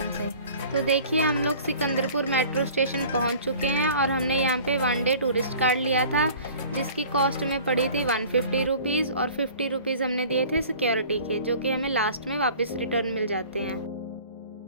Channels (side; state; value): both; inverted; correlation -0.46